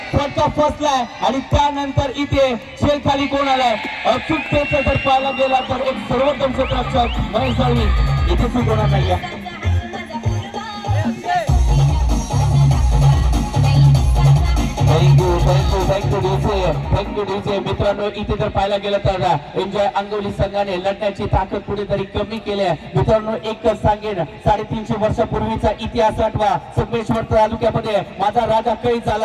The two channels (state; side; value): identical; both; correlation 1.00